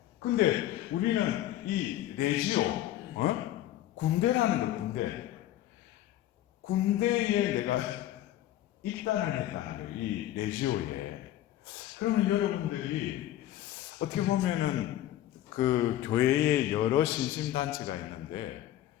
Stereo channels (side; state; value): right; quieter; 13.3 dB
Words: 근데 우리는 이 레지오 군대라는 거 군대에 내가 입단을 했다는 거예요. 이 레지오에. 그러면 여러분들이 어떻게 보면은 그 교회에 여러 신심단체가 있는데